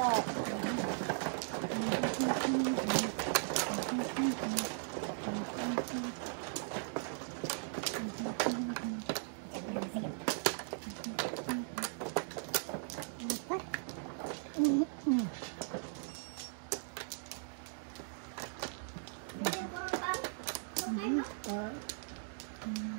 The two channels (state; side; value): silent; left; digital silence